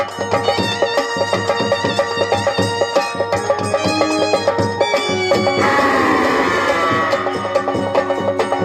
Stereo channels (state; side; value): identical; both; correlation 1.00